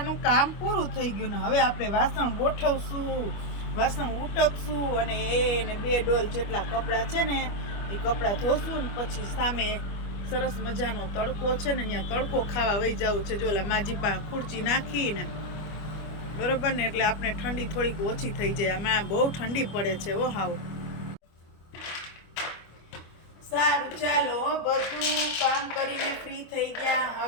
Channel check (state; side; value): late; right; 25 ms